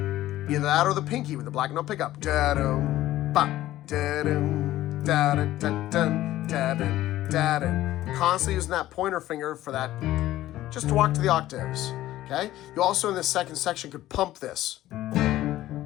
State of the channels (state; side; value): quieter; right; 14.8 dB